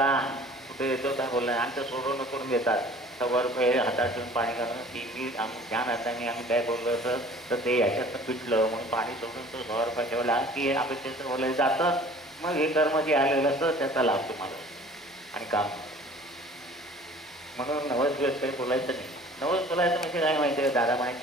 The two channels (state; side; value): normal; both; correlation 0.48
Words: कुठे येतो काय बोललाय, आमचं सोडवणं करून देतात। 100 रुपये हातात ठेवून पाणी घालून की मी ध्यान हाताने आम्ही काय बोललो असं तर ते याच्यातनं पिटलं म्हणून पाणी सोडून तो 100 रुपये ठेवला की अपेक्षेचं बोलायला जातं। मग हे कर्म जे आलेलं असतं त्याचा लाभ तुम्हाला आणि काम। म्हणून नवस दिवस काही बोलायचं नाही। नवस बोलायचं म्हणजे काय माहिती आहे दादा,